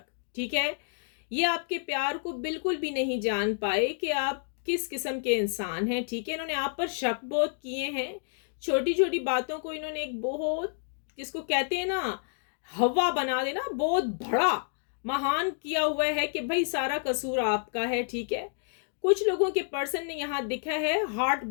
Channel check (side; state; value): right; silent; digital silence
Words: ठीक है। ये आपके प्यार को बिल्कुल भी नहीं जान पाए कि आप किस किस्म के इंसान हैं, ठीक है। इन्होंने आप पर शक बहुत किए हैं, छोटी छोटी बातों को इन्होंने एक बहुत, जिसको कहते हैं ना, हवा बना देना, बहुत बड़ा महान किया हुआ है कि भाई सारा कसूर आपका है, ठीक है। कुछ लोगों के पर्सन ने यहाँ दिखा है हार्ट